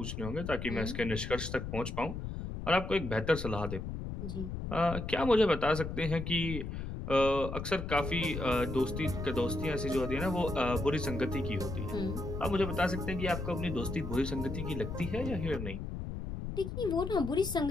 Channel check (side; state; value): left; noise; rumble, 6 dB below the sound